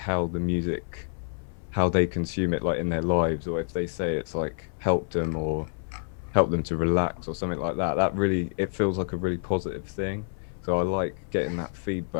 the music, how they consume it like in their lives, or if they say it's like helped them or helped them to relax or something like that. That really, it feels like a really positive thing. So I like getting that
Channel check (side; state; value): right; silent; 60 dB below the other